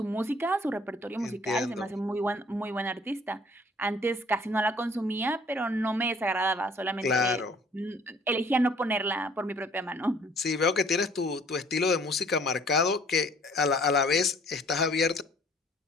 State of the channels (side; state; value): both; normal; correlation 0.57